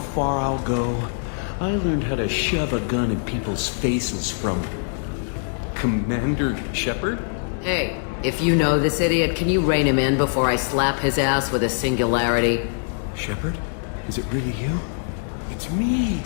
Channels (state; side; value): silent; right; digital silence